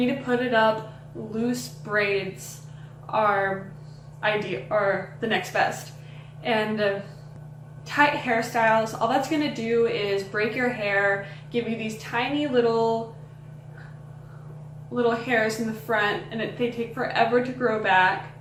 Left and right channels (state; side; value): identical; both; correlation 1.00